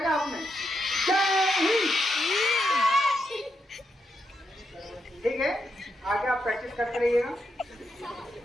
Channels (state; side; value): normal; both; correlation 0.82